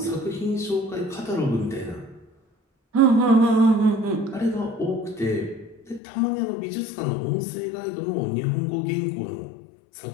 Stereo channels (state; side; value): drops out; right; at 6.0 s